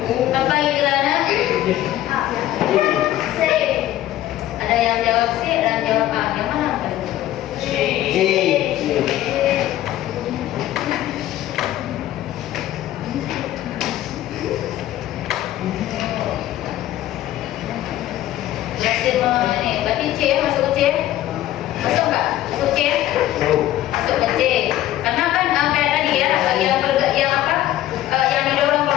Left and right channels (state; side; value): quieter; right; 13.7 dB